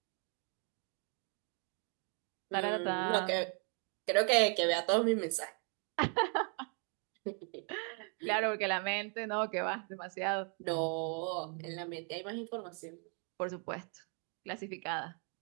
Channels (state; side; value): quieter; left; 39.8 dB